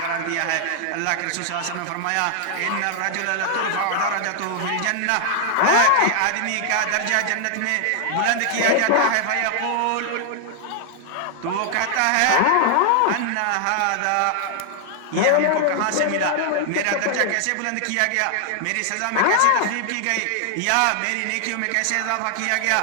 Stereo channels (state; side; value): different; both; correlation 0.00